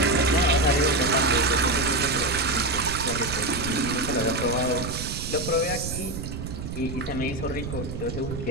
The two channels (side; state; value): right; noise; rumble, 7 dB below the sound